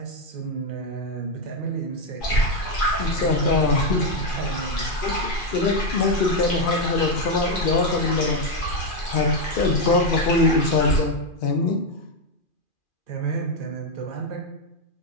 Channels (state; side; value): late; right; 2.4 ms